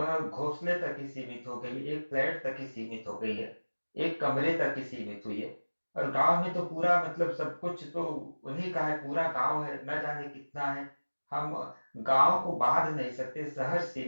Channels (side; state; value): both; inverted; correlation -1.00